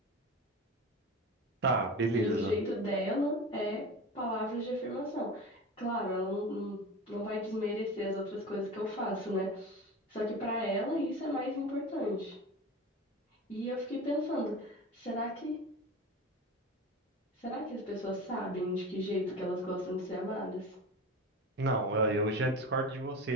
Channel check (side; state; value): both; normal; correlation 0.31